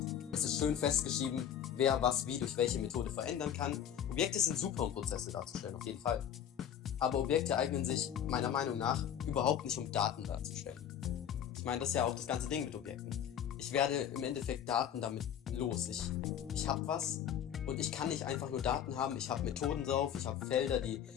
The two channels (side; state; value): right; quieter; 9.4 dB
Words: Es ist schön festgeschrieben, wer was wie durch welche Methode verändern kann. Objekte sind super, um Prozesse darzustellen, auf jeden Fall. Aber Objekte eignen sich meiner Meinung nach überhaupt nicht, um Daten darzustellen. Ich meine, das ist ja auch das ganze Ding mit Objekten. Ich werde im Endeffekt Daten damit los. Ich habe was und ich kann nicht einfach nur Daten haben. Ich habe Methoden drauf, ich habe Felder, die